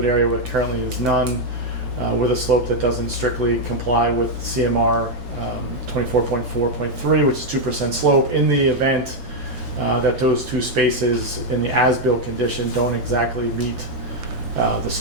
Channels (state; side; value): normal; both; correlation 0.01